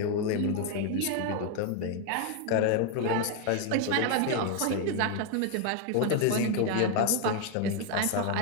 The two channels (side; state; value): both; different; correlation 0.01